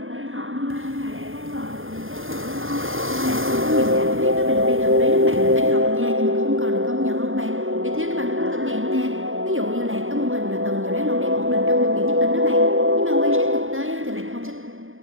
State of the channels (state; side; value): late; left; 0.59 ms